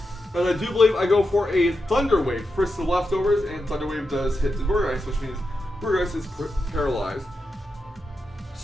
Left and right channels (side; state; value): both; normal; correlation 0.88